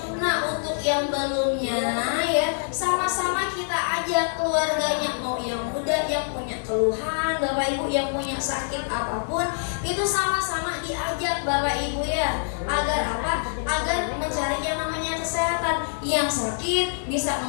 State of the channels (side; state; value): right; silent; digital silence